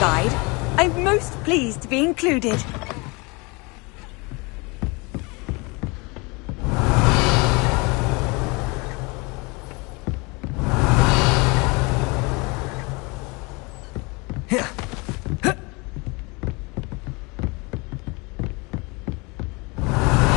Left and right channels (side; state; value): right; quieter; 27.9 dB